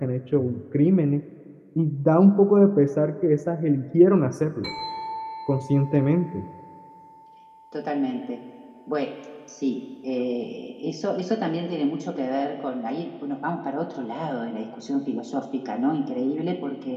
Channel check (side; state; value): both; identical; correlation 1.00